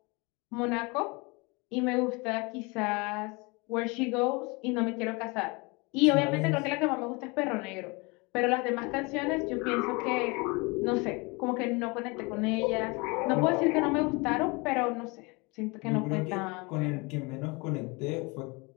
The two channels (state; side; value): quieter; right; 27.4 dB